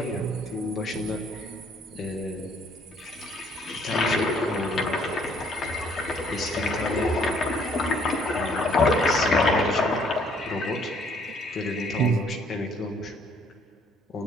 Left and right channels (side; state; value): both; normal; correlation 0.63